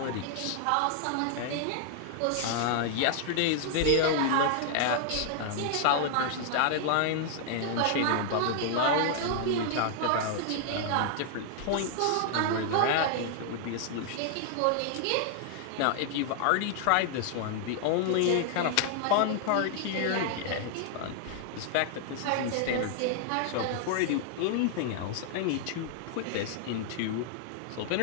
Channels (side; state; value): both; different; correlation 0.00